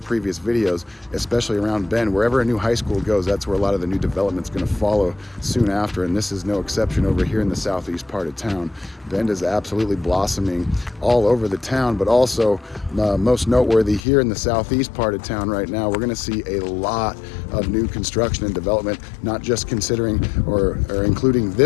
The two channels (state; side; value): drops out; right; at 14.1 s